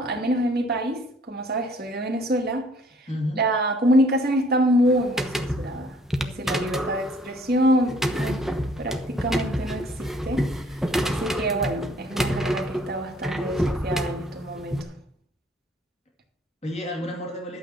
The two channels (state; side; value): normal; both; correlation 0.59